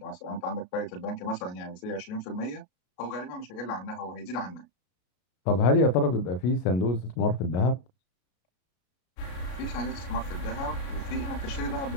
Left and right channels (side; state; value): right; late; 32 ms